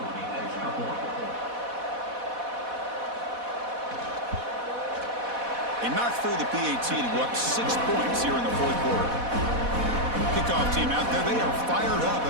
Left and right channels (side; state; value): left; late; 4.1 ms